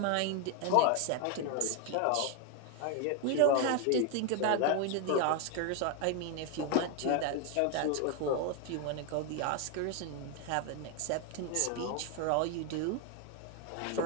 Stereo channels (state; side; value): different; both; correlation 0.01